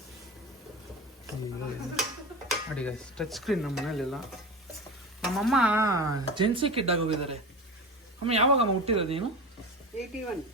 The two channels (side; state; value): both; normal; correlation 0.28